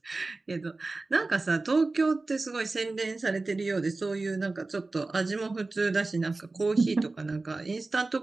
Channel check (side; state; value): left; quieter; 3.4 dB